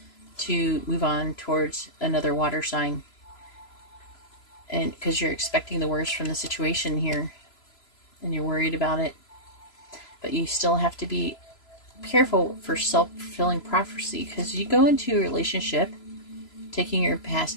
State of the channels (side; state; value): right; late; 3.0 ms